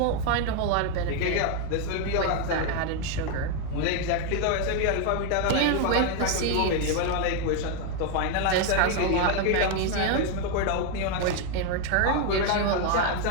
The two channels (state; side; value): different; both; correlation 0.01